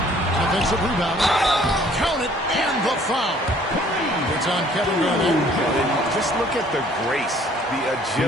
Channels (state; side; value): normal; both; correlation 0.58